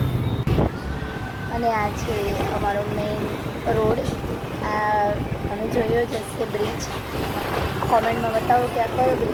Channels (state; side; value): identical; both; correlation 1.00